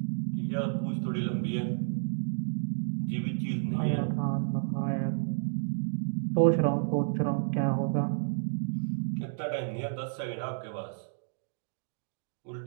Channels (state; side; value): silent; left; digital silence